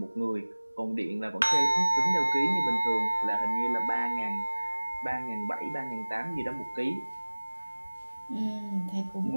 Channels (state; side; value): inverted; both; correlation -1.00